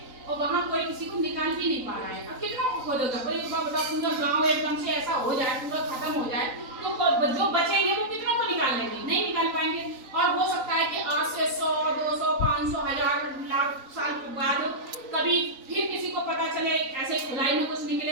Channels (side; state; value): left; late; 3.9 ms